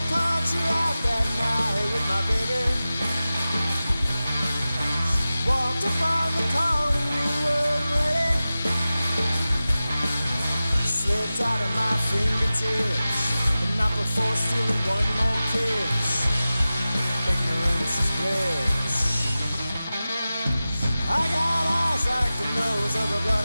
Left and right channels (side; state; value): both; inverted; correlation -0.95